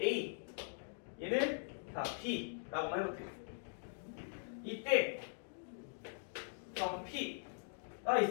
A 얘는 자, B라고 한번 해볼게요. 이때 점 P가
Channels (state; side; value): silent; right; digital silence